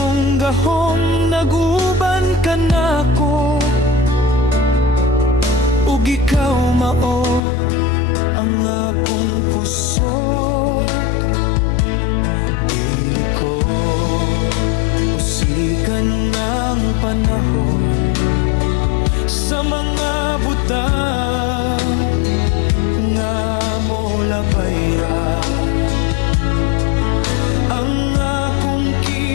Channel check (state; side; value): drops out; right; at 7.4 s